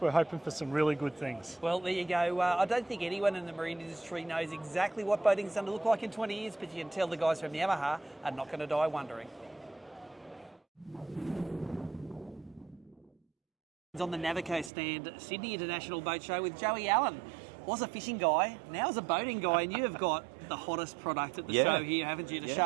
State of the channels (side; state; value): left; drops out; at 14.7 s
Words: hoping for some really good things. Well, there you go. I don't think anyone in the marine industry knows exactly what boating's going to look like in 20 years, but you can tell the guys from Yamaha are not going to die wondering. On the Navico stand, Sydney International Boat Show with Joey Allen. Was a fishing guy, now is a boating guy, and you have got the hottest product at the show here, haven't you, to